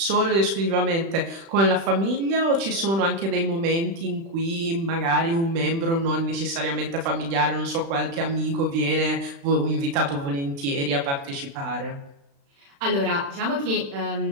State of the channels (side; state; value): left; late; 36 ms